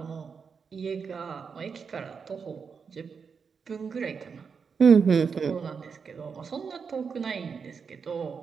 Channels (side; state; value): left; quieter; 5.9 dB